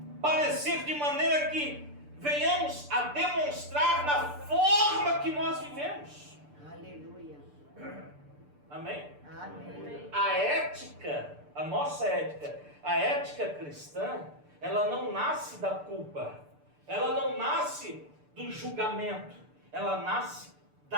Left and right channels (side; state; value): left; late; 6.8 ms